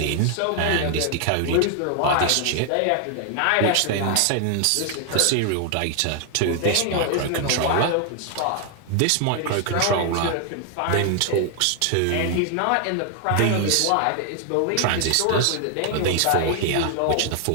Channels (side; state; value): both; different; correlation 0.00